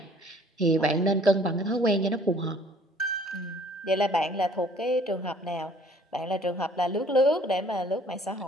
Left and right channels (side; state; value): both; normal; correlation 0.56